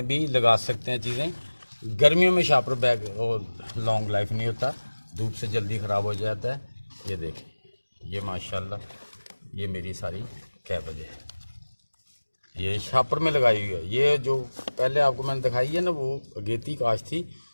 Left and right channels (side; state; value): both; inverted; correlation -1.00